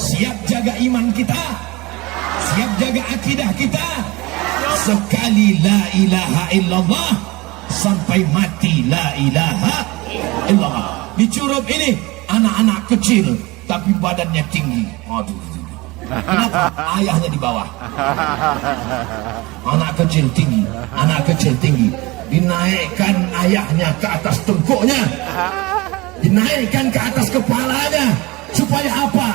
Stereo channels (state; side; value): quieter; left; 22.5 dB